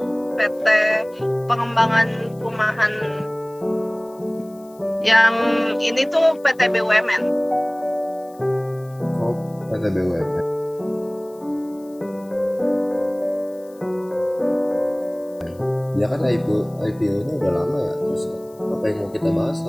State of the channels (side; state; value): left; noise; hiss, 28 dB below the sound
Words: Pengembangan Perumahan. Yang ini tuh PT BUMN. Oh, PT BUMN. Ya kan IPO-nya udah lama ya. Terus apa yang mau kita bahas